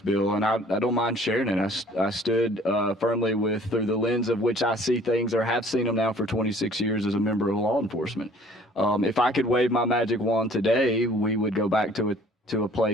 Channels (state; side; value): normal; both; correlation 0.54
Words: and I don't mind sharing it. I stood firmly through the lens of which I see things, or have seen them now for 26 years as a member of law enforcement. If I could wave my magic wand today, we would go back to a